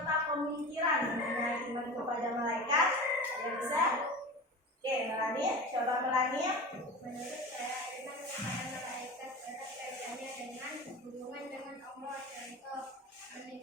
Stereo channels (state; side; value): normal; both; correlation 0.31